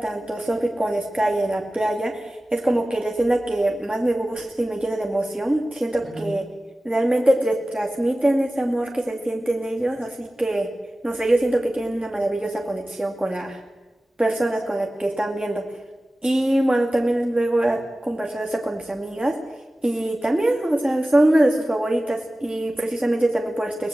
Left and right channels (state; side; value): normal; both; correlation 0.96